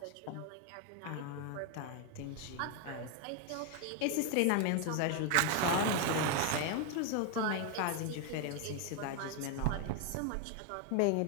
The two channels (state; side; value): different; both; correlation 0.01